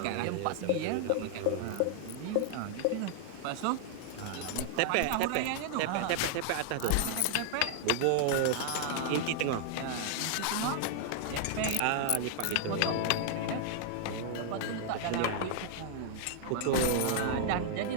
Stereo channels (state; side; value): different; both; correlation 0.00